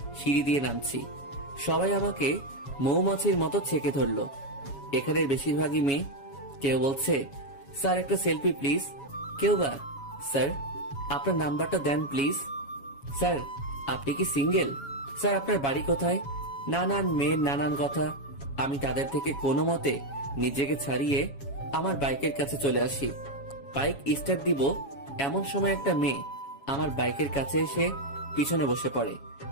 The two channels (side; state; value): right; late; 7.2 ms